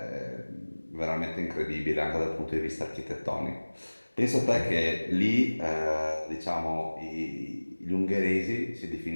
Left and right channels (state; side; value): inverted; both; correlation -1.00